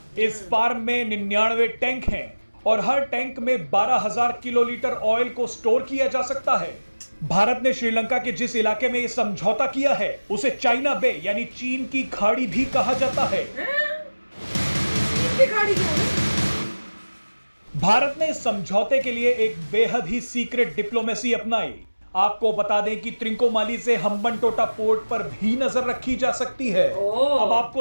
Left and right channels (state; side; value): inverted; both; correlation -1.00